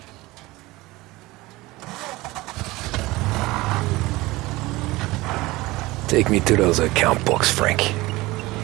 Take me to those account books, Frank.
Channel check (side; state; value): left; quieter; 20.4 dB